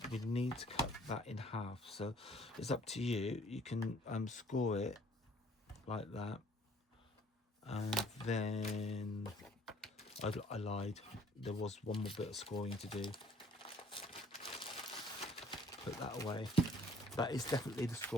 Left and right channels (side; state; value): both; normal; correlation 0.57